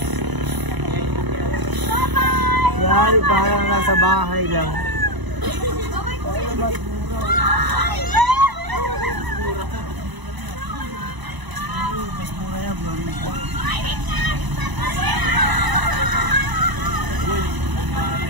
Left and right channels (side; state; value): left; late; 1.0 ms